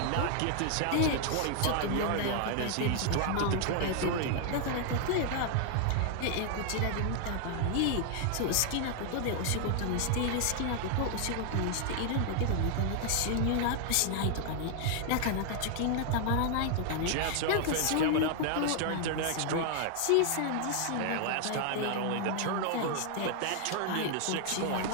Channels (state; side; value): different; both; correlation 0.00